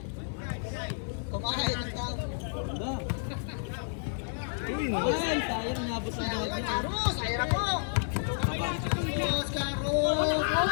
Kumakain ng tao. Ay, sayang nabot sa Sayang mga ang Carlos, ayun na po. Carlos,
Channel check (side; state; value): right; silent; 57 dB below the other